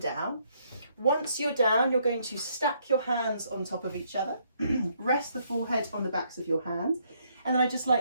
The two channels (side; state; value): both; inverted; correlation -0.71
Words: Once you're down, you're going to stack your hands on top of each other. Rest the forehead on the backs of your hands. And then I'd just